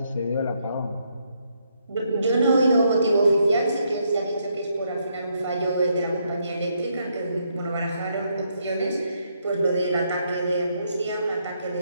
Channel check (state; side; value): inverted; both; correlation -0.75